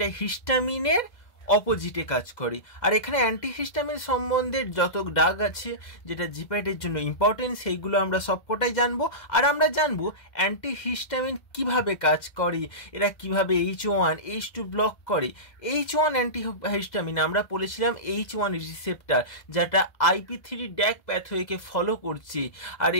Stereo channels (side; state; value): right; late; 2.0 ms